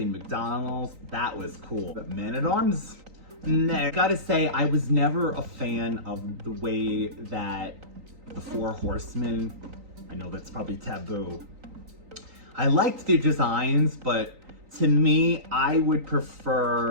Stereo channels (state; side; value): late; left; 3.9 ms